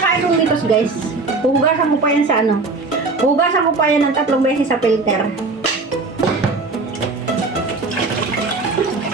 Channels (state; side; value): quieter; left; 3.7 dB